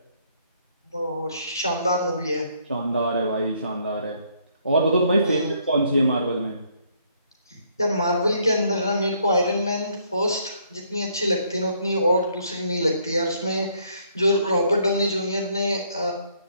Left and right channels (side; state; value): both; inverted; correlation -0.68